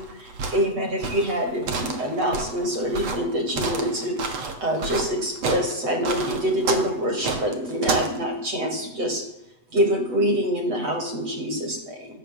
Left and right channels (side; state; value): left; late; 8.0 ms